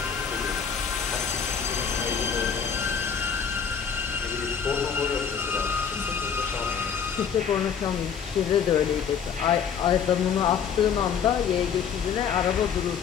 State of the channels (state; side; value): quieter; right; 7.1 dB